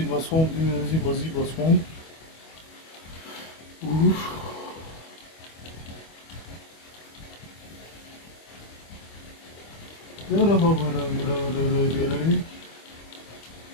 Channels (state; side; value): late; right; 25 ms